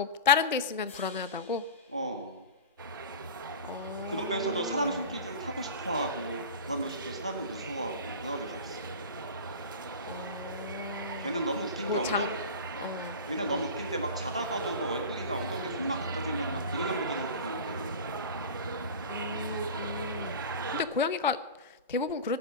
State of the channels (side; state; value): both; inverted; correlation -0.31